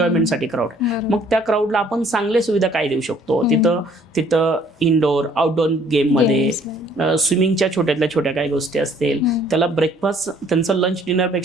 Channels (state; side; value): normal; both; correlation 0.60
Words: क्राऊड आहे. मग त्या क्राऊडला आपण चांगले सुविधा काय देऊ शकतो, तिथं इनडोअर आउटडोअर गेममध्ये स्विमिंगच्या छोट्यातल्या छोट्या काही गोष्टी असतील, त्याला ब्रेकफास्ट, त्यांचं लंच